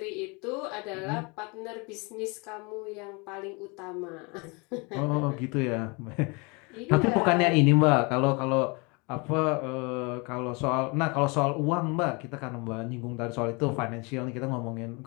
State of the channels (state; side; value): quieter; right; 29.4 dB